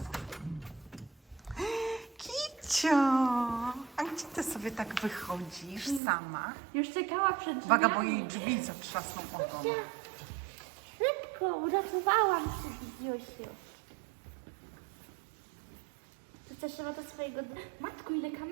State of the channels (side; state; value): left; drops out; at 6.0 s